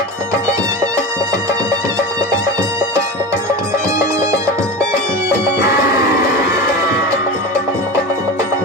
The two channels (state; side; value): normal; both; correlation 0.27